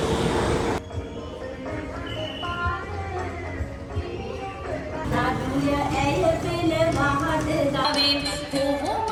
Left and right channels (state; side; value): identical; both; correlation 1.00